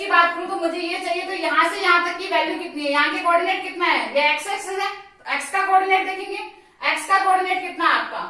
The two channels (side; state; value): both; identical; correlation 1.00